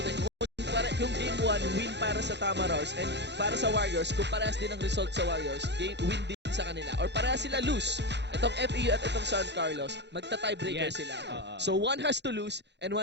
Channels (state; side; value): late; left; 0.50 ms